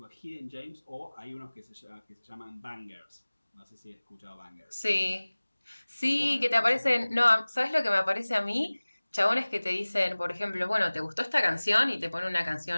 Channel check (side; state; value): both; inverted; correlation -1.00